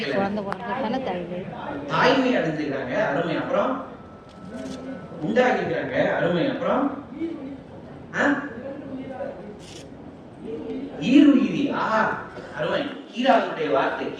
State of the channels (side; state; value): both; identical; correlation 1.00